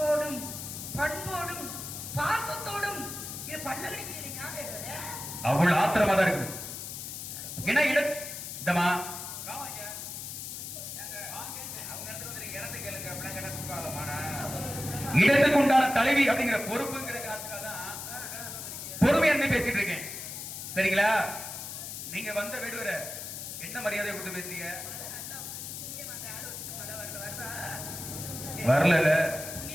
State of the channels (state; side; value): noise; left; hiss, 8 dB below the sound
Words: பண்போடும் பாசத்தோடும் இது பண்ண கிடைக்கிறீங்க. அவ்வளவு ஆத்திரமா தான் இருக்குது. என்ன இடம் இந்தமா இடத்துக்கு உண்டான தலைவி அப்படிங்கிற பொறுப்புங்கிற காரணத்துக்காக பொறுமை என்ன பேசிட்டு இருக்கேன். சரிங்களா? நீங்க வந்த வேடுவர என்ன மரியாதை கொடுத்து பேசுறீங்க? வரல.